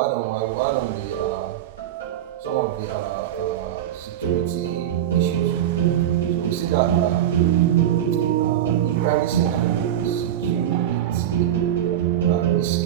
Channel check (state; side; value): quieter; left; 11.1 dB